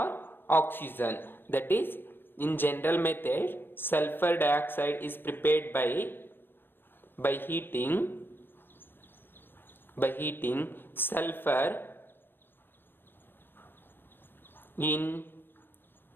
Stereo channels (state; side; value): late; right; 0.10 ms